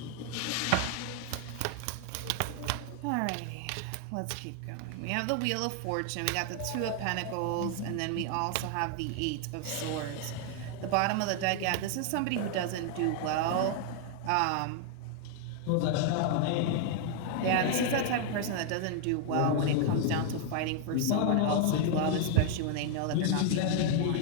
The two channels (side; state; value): both; different; correlation 0.00